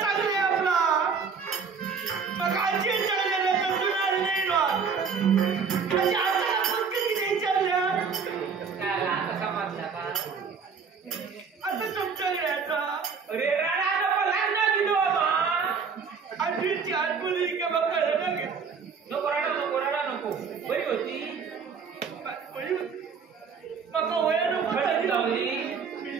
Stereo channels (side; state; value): left; quieter; 5.8 dB